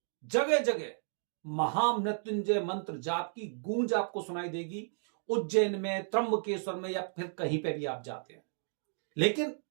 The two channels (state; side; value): silent; left; digital silence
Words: जगह जगह महामृत्युंजय मंत्र जाप की गूंज आपको सुनाई देगी। उज्जैन में, त्र्यंबकेश्वर में या फिर कहीं पे भी आप जाते हैं, लेकिन